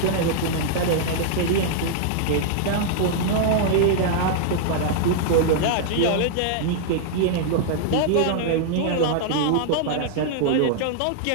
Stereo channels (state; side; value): different; both; correlation -0.01